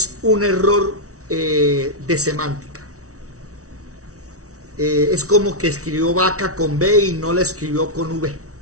un error de semántica. Es como que escribió vaca con B y no la escribió con V.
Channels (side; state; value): left; late; 0.65 ms